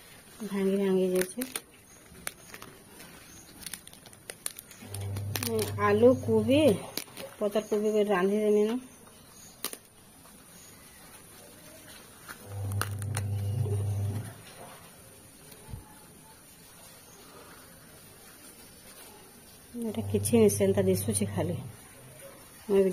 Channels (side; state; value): both; identical; correlation 1.00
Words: भांगी जैसे आलू कोबी पतर कोबी को रांधि देमी न एटा किछि नहीं सेंता दिसुछि खाली मैं भी